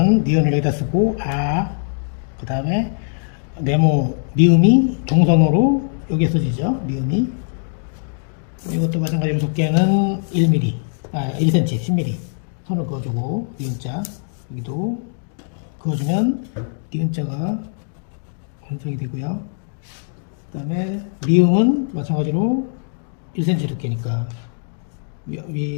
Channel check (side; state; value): right; silent; digital silence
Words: 니은을 여기다 쓰고, 그 다음에 네모, 미음이 동성으로 여기에 써지죠. 미음이. 이것도 마찬가지로 두께는 1mm, 1cm, 10mm 선을 그어주고, 니은자, 여기도 그어주면 니은자가 완성이 되고요. 그 다음에 미음은 마찬가지로 1cm 두께니까